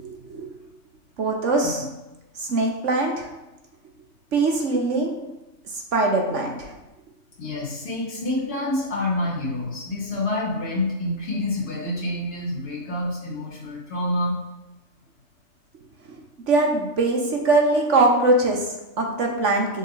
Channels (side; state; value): left; late; 3.5 ms